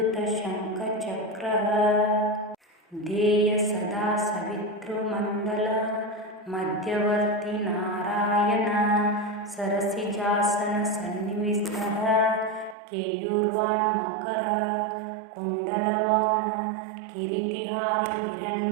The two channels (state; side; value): drops out; left; at 12.8 s